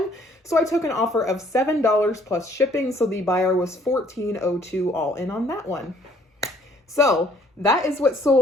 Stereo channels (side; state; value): both; normal; correlation 0.61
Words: So I took an offer of $7 plus shipping. So the buyer was $14.02 all in on that one. So that is what